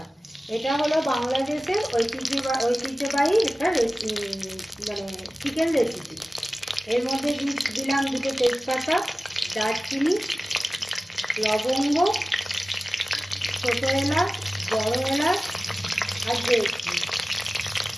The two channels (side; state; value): both; normal; correlation 0.96